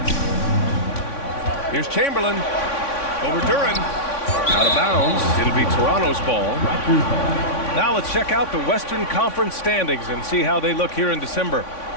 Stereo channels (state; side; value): late; right; 3.5 ms